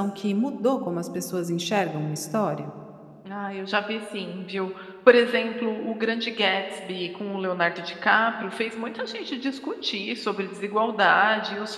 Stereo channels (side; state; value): both; identical; correlation 1.00